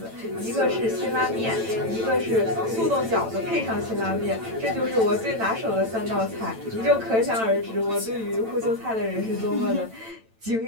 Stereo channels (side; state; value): left; late; 9.0 ms